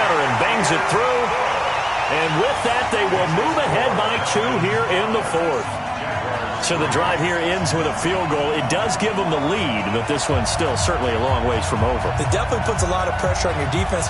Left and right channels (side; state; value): both; identical; correlation 1.00